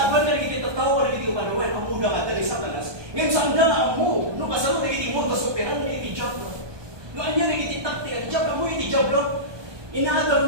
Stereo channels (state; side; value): late; left; 1.2 ms